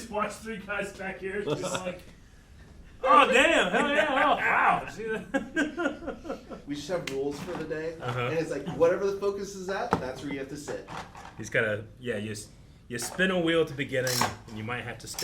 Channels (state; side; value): identical; both; correlation 1.00